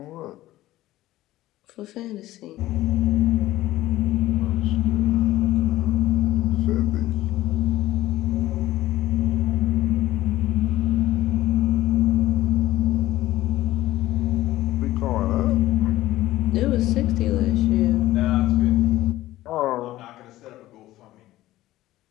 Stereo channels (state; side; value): quieter; right; 15.8 dB